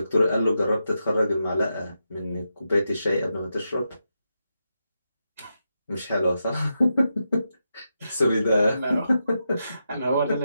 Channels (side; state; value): both; inverted; correlation -0.86